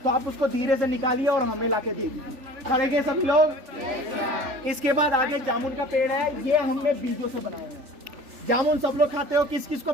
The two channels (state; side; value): late; left; 3.4 ms